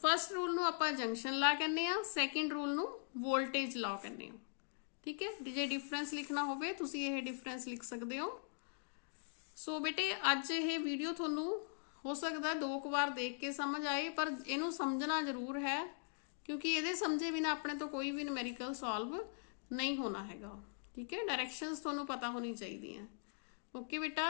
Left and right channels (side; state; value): right; silent; digital silence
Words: rule नूं आपां जंक्शन लॉ कहने आ, सेकंड रूल नूं वोल्टेज लॉ कहने आ। ठीक है, जे डिफरेंस लिखना होवे तुसीं ये डिफरेंस लिख सकते हो। सो बेटे अज ये वीडियो थोनू हो सकता है 2 बार देख के समझ आए, पर इनू समझना जरूर है, क्योंकि ये समझे बिना अपने तो कोई भी न्यूमेरिकल सॉल्व नहीं होना हैगा। ठीक है, डायरेक्शंस थोनू पता होनी चाहिए। ओके